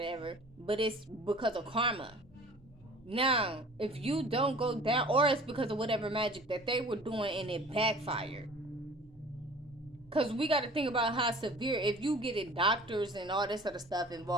but it's because of karma. Now, if you don't go down, or it's because of whatever magic that they were doing and it backfired. Because we got to think about how severe, if you get in doctors and all this other stuff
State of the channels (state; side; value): normal; both; correlation 0.46